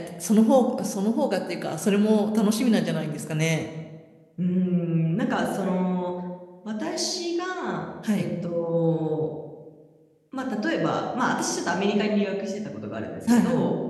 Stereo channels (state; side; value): identical; both; correlation 1.00